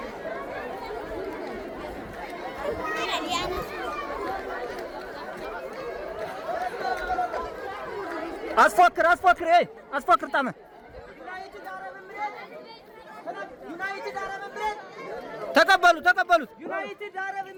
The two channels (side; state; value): both; identical; correlation 1.00